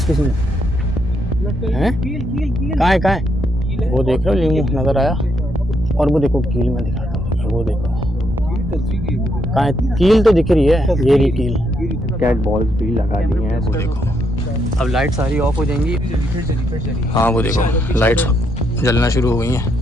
किसी ने। हैं? कहाँ है? वो देख रहे हो लीमू नजर आया। और वो देखो कील में दिखाता हूँ, वो देखो कहाँ है? कील तो दिख रही है, ये रही कील। कैट बॉल्स भी लगा दी हैं, वो देखो। अब लाइट सारी ऑफ हो जाएंगी। हाँ वो देखो लाइट्स जलना शुरू हो गई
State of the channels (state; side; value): normal; both; correlation 0.77